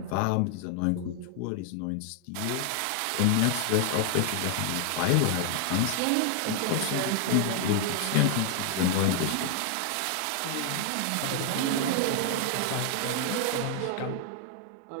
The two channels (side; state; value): both; different; correlation 0.00